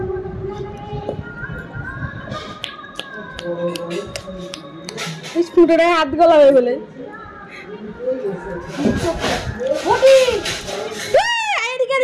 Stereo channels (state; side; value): identical; both; correlation 1.00